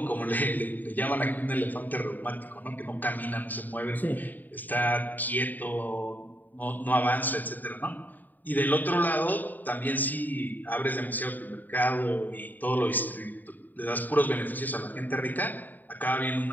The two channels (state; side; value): late; right; 0.087 ms